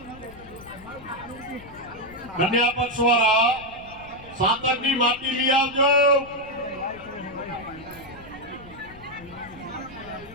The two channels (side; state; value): left; noise; rumble, 20 dB below the sound